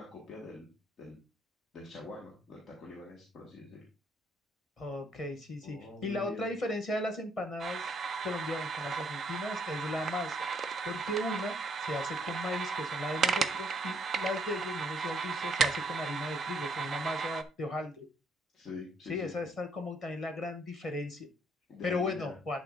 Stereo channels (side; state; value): both; normal; correlation 0.68